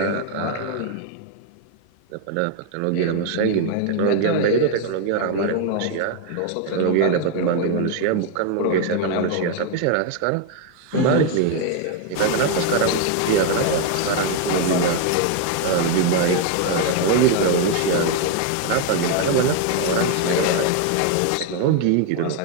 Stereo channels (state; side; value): different; both; correlation 0.01